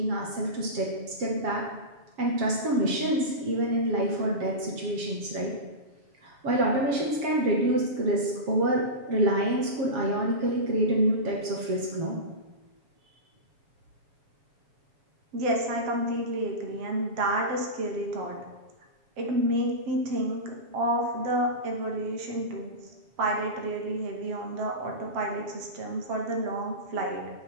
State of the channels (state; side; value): late; left; 7.2 ms